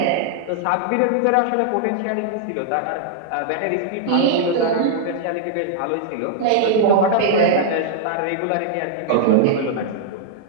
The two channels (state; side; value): different; both; correlation -0.01